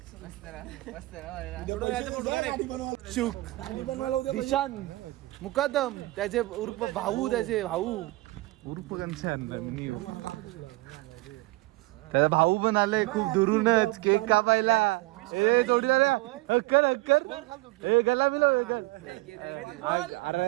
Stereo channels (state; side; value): quieter; left; 21.0 dB